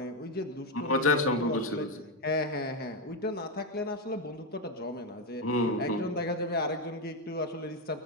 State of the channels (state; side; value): normal; both; correlation 0.07